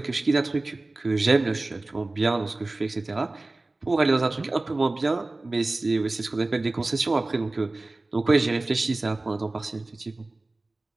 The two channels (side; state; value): left; quieter; 3.0 dB